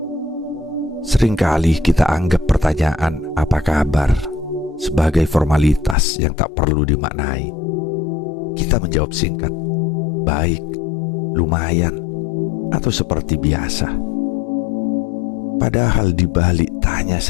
Seringkali kita anggap pertanyaan "apa kabar?" sebagai formalitas yang tak perlu dimaknai. Kita menjawab singkat, "Baik, lumayan," atau seperti biasa. Padahal di balik tanya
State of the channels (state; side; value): drops out; right; at 6.0 s